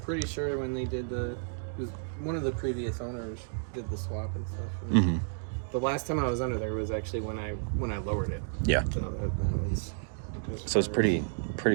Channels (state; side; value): silent; left; digital silence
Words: sure when they did one of the previous owners did the swap and stuff. And the last time I was under there was actually when I lowered it. Yeah. So it's pretty